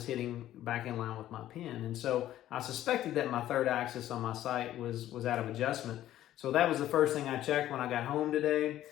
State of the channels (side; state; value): right; quieter; 13.0 dB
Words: hitting back in line with my pin. And so I suspected that my third axis on my sight was out of adjustment. So that was the first thing I checked when I got home today.